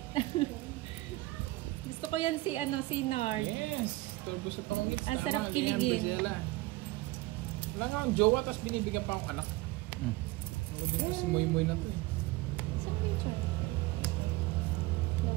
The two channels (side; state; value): left; quieter; 19.8 dB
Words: Gusto ko yan si Nard. Yes. Turbo sa pangungits. Ang sarap kiligin. Wala nga akong jowa, tapos binibigyan pa akong anak. Ako din kasi moy-moy na to eh. Saan ba yung char?